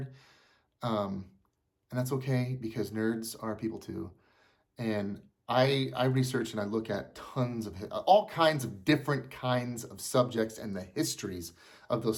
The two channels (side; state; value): both; identical; correlation 1.00